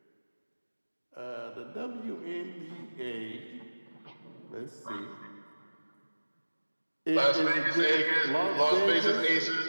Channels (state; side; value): inverted; both; correlation -1.00